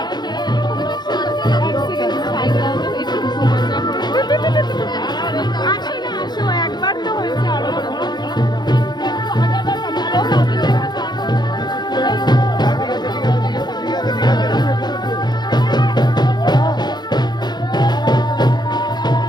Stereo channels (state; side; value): late; right; 0.21 ms